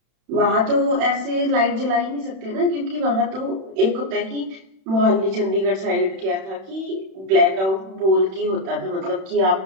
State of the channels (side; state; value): left; late; 31 ms